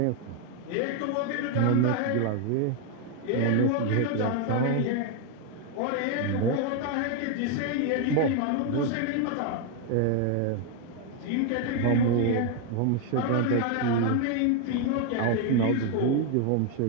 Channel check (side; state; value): both; different; correlation 0.01